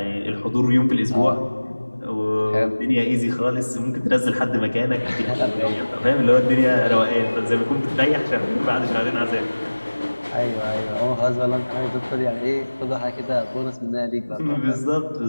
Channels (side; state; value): both; inverted; correlation -1.00